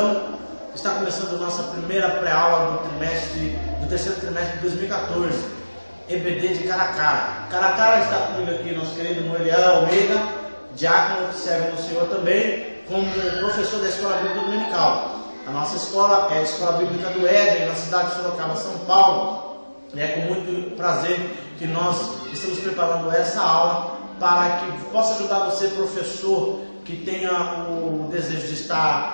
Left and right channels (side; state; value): both; inverted; correlation -1.00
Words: Está começando a nossa primeira pré-aula do terceiro trimestre de 2014, EBD de Caracara. Caracara está comigo aqui nosso querido Noeliel Almeida, diácono que serve no Senhor também, como professor da Escola Bíblica Dominical. A nossa escola é a Escola Bíblica do Éden, na cidade de Sorocaba, São Paulo. E é com muito prazer que nós estamos preparando essa aula para que possa ajudar você, professor, que tenha o desejo de